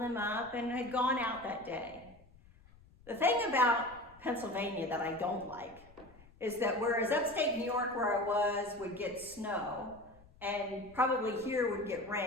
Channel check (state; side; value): noise; left; rumble, 25 dB below the sound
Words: up and had gone out that day. The thing about Pennsylvania that I don't like is that whereas upstate New York, where I was, would get snow, and probably here would get